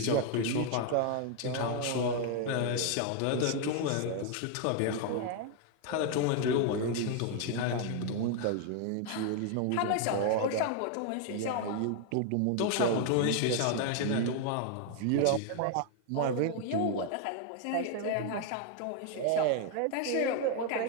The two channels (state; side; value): different; both; correlation 0.00